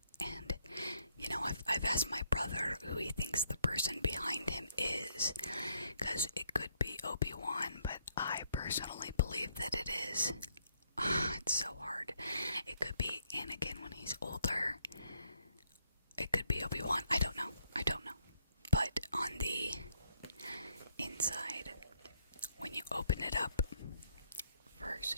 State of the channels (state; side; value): inverted; both; correlation -0.72